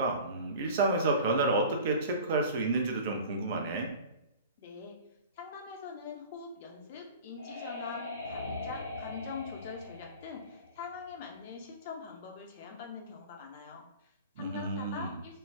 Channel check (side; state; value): both; inverted; correlation -0.39